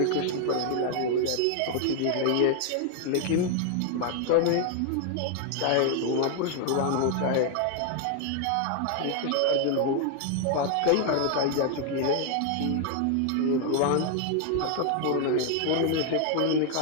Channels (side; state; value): both; different; correlation 0.00